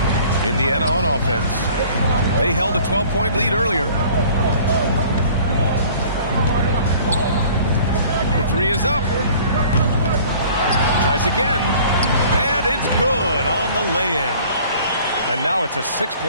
Indiana on offense. They held a 12-point lead earlier. The 3 is up. Tries again, and it's good on the lay-in. And now it's a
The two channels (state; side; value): inverted; both; correlation -0.50